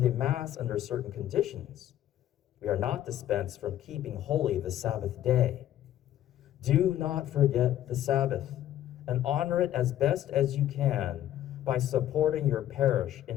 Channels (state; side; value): quieter; right; 12.3 dB